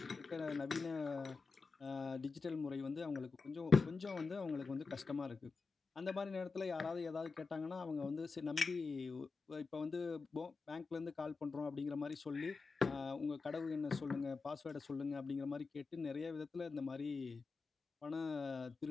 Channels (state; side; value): quieter; right; 4.4 dB